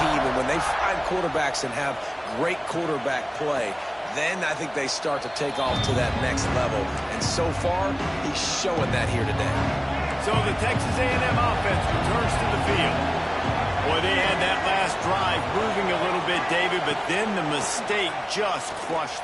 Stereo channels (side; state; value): both; identical; correlation 1.00